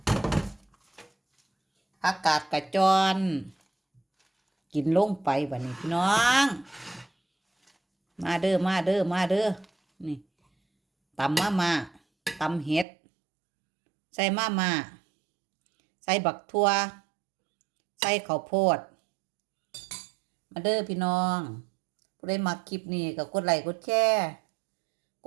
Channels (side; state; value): left; drops out; at 12.9 s